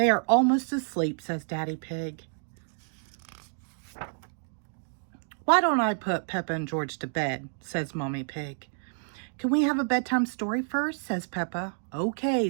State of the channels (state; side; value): silent; left; digital silence